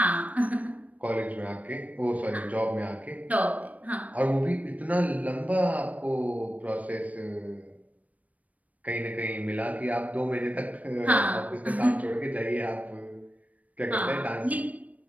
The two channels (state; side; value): late; left; 0.070 ms